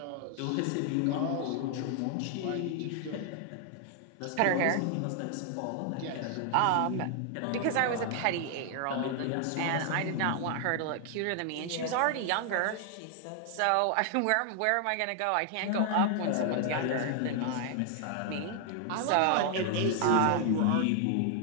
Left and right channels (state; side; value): different; both; correlation 0.00